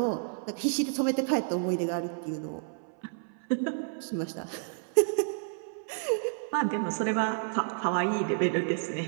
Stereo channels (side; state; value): left; silent; 58 dB below the other